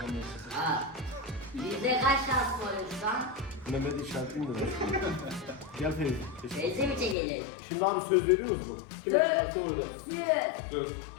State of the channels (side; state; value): right; drops out; at 7.2 s